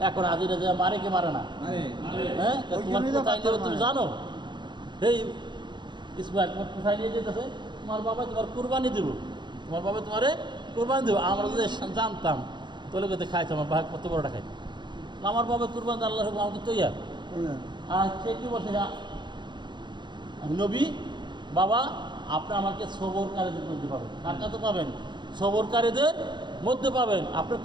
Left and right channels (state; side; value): late; left; 0.22 ms